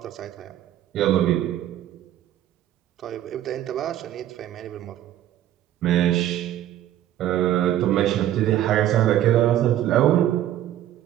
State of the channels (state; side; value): quieter; left; 12.3 dB